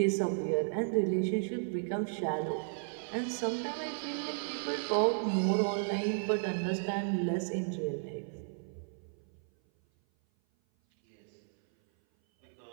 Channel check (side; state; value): left; silent; 55 dB below the other